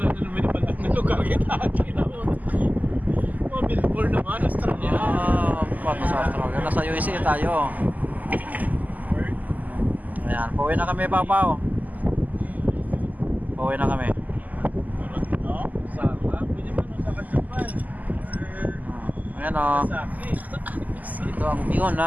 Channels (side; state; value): left; late; 0.080 ms